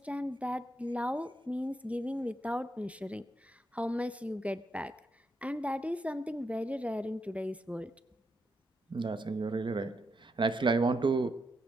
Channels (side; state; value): both; normal; correlation 0.81